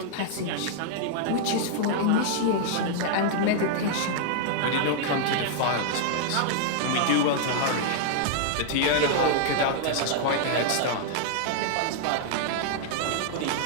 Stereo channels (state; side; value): different; both; correlation 0.00